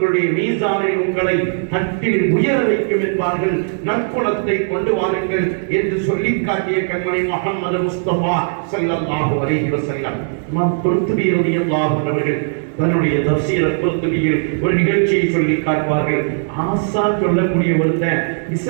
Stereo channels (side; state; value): left; silent; 61 dB below the other